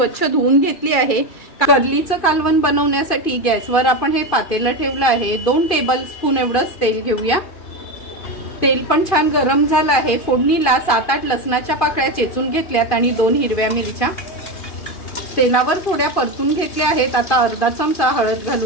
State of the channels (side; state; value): right; late; 2.5 ms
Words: धुवून घेतली आहे। कारलीचं कालवण बनवण्यासाठी गॅसवर आपण हे पातेलं ठेवलं आहे। 2 टेबलस्पून एवढंच तेल घेऊया। तेल पण छान गरम झालं आहे। फोडणीला 7-8 लसणाच्या पाकळ्या चेचून घेतल्यात आणि 2 हिरव्या मिरच्या तेलावर थोड्या परतून घेतल्या आहेत। आता अर्धा चमचा हळद